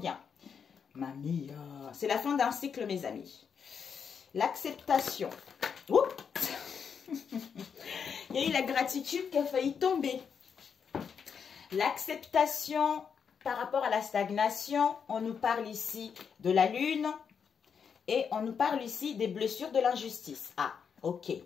Mamie, c'est la fin d'un cycle, mes amis. L'acceptation. Il y a eu la gratitude qui a failli tomber. L'acceptation par rapport à la stagnation, on nous parle ici de la lune et on nous parle ici des blessures de l'injustice. Ah, ok.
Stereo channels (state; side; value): quieter; right; 6.7 dB